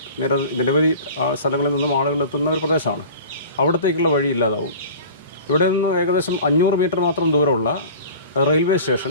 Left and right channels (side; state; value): both; inverted; correlation -0.39